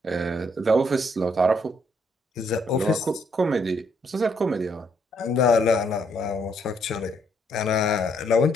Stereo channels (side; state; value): both; normal; correlation 0.71